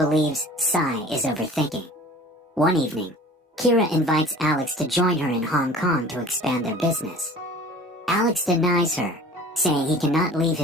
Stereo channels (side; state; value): both; normal; correlation 0.44